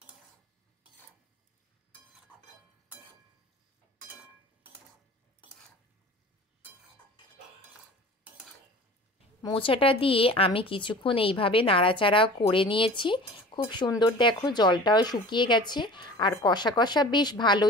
মোচাটা দিয়ে আমি কিছুক্ষণ এইভাবে নাড়াচাড়া করে নিয়েছি। খুব সুন্দর, দেখো জলটাও শুকিয়ে গেছে আর কষা কষা বেশ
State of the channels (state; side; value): normal; both; correlation 0.41